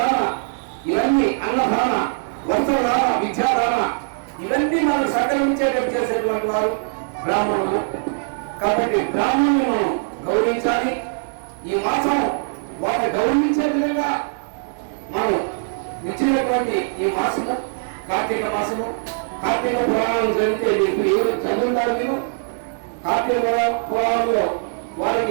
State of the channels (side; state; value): left; silent; 65 dB below the other